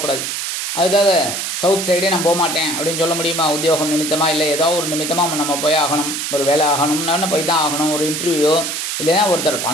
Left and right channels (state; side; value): noise; right; hiss, 3 dB below the sound